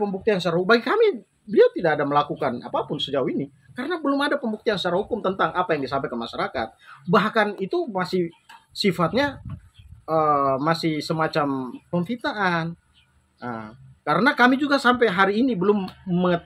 secara hukum. Bagi kami beliau tidak ada melakukan apapun sejauh ini karena belum ada pembuktian secara hukum tentang apa yang disampaikan ke masyarakat. Bahkan itu masih sifatnya masih semacam pemfitnaan. Karena kami juga sampai hari ini belum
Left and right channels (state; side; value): identical; both; correlation 1.00